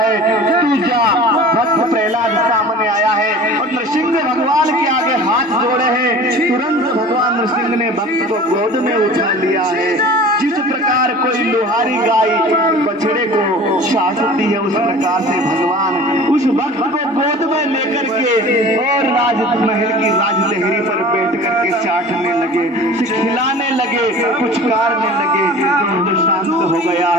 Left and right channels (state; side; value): normal; both; correlation 0.41